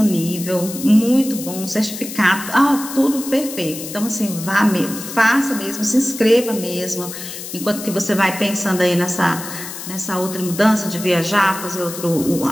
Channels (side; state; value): left; noise; hiss, 10 dB below the sound